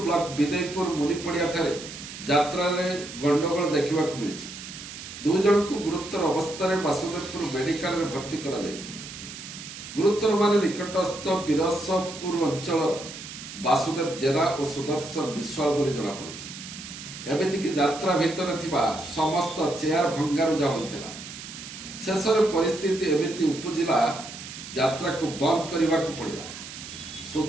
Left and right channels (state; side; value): noise; right; hiss, 12 dB below the sound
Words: ବ୍ଲକ ବିଦେଇପୁର ମୁନିପଡ଼ିଆ ଠାରେ ଯାତ୍ରାରେ ଗଣ୍ଡଗୋଳ ଦେଖିବାକୁ ମିଳିଛି। ଦୁଇ ଜଣଙ୍କୁ ଗୁରୁତର ଅବସ୍ଥାରେ ବାସୁଦେବପୁର ମେଡିକାଲରେ ଭର୍ତ୍ତି କରାଯାଇଛି। ଗୁରୁତରମାନେ ନିକଟସ୍ଥ ବିରସପୁର ଅଞ୍ଚଳର ବାସୁଦେବ ଜେନା ଓ ସୁଦର୍ଶନ ବିଶ୍ୱାଳ ବୋଲି ଜଣାପଡ଼ିଛି। ଏମିତିକି ଯାତ୍ରା ଭିତରେ ଥିବା ସମସ୍ତ ଚେୟାର ଭଙ୍ଗାରୁଜା ହୋଇଥିଲା। ଶେଷରେ ପରିସ୍ଥିତି ଏମିତି ଉପୁଜିଲା ଯାତ୍ରାକୁ ବନ୍ଦ କରିବାକୁ ପଡ଼ିଲା।